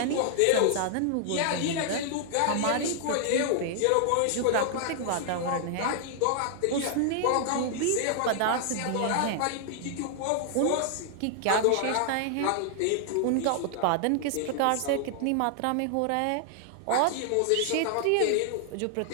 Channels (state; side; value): different; both; correlation -0.01